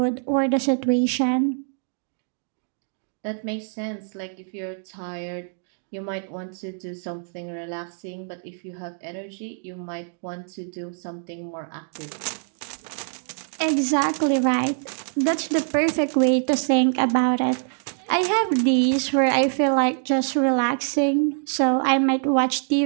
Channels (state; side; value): silent; left; digital silence